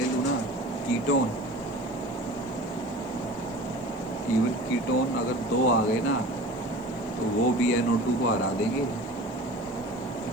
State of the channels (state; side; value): noise; left; hiss, 28 dB below the sound